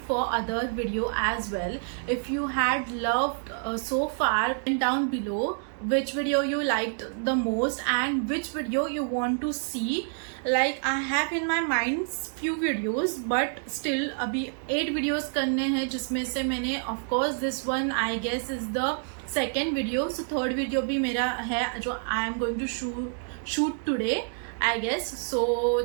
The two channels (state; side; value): silent; left; 59 dB below the other